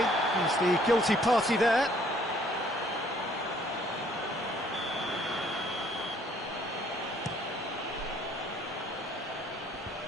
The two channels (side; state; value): both; normal; correlation 0.61